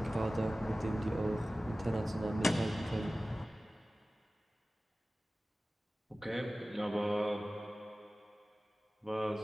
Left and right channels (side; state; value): both; normal; correlation 0.97